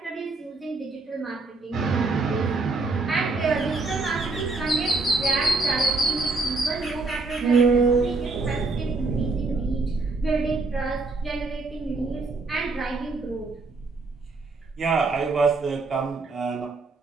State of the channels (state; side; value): quieter; left; 3.6 dB